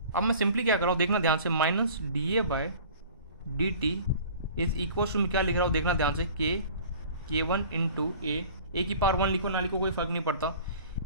अब मैं सिंपली क्या कर रहा हूँ, देखना ध्यान से, minus D A by D T is equal to क्या लिख रहा हूँ, देखना ध्यान से, k1 इंटू ए की पावर 1 लिखो ना लिखो कोई फर्क नहीं पड़ता,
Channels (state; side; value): inverted; both; correlation -0.45